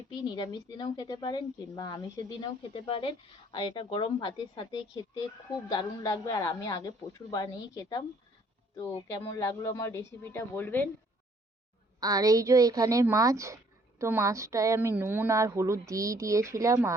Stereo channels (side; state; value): both; normal; correlation 0.62